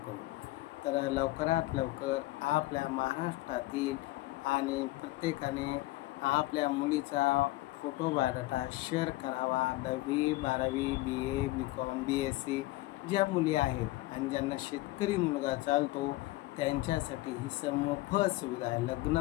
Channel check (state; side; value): quieter; right; 19.2 dB